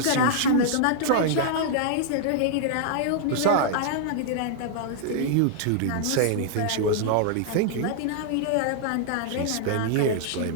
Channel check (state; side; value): different; both; correlation -0.01